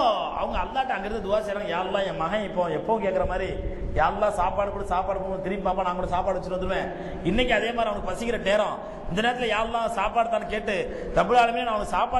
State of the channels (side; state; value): both; identical; correlation 1.00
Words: அவங்க அல்லாஹ்ட்ட அங்கிருந்து துவா செய்றாங்க, யா அல்லாஹ் என் மகன் இப்போ எப்போ கேட்குற மாதிரி, யா அல்லாஹ் சாப்பாடு கூட சாப்பாடு போகும், திரும்பி பாப்பா நான் கூட சாப்பாடு வச்சுட்டு வந்துடுவேன். இன்னைக்கு அதே மாதிரி அவனுக்கு பசிக்கிற நேரம், இந்த நேரத்தில் யா அல்லாஹ் சாப்பாடு தான் கேட்டு ரப்புல் ஆலமீன் அவனுக்கு